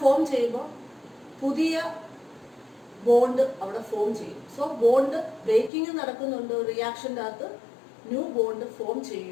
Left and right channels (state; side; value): drops out; right; at 5.7 s